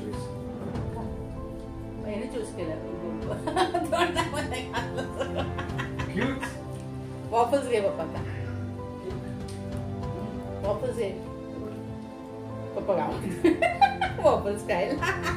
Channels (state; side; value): identical; both; correlation 1.00